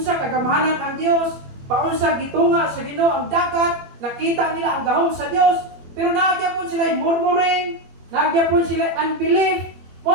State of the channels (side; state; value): left; late; 21 ms